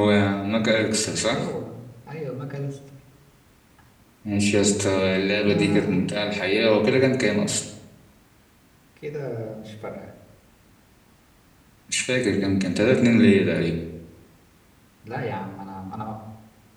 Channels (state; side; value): identical; both; correlation 1.00